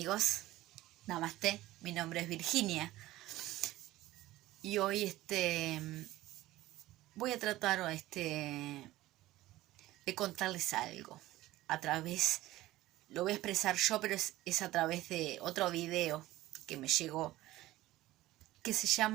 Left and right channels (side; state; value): left; quieter; 16.6 dB